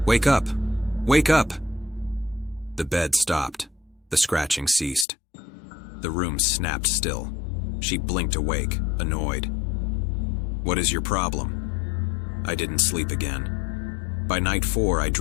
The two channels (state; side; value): drops out; right; at 5.1 s